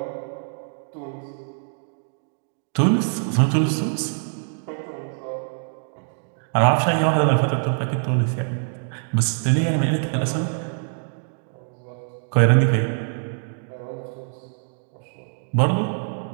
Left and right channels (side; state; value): left; silent; 62 dB below the other